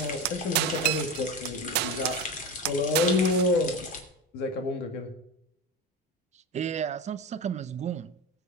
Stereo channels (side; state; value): both; normal; correlation 0.23